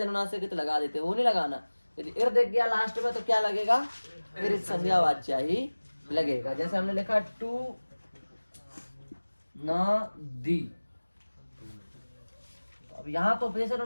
लगा देते हैं, वो नहीं लगाना। यदि इर दिख गया लास्ट में तो क्या लगेगा, इरित संज्ञा वाच्या ही लगेगा। जैसे हमने लिखा टू न दी, तो अब यहाँ तो उपदेश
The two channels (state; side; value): inverted; both; correlation -1.00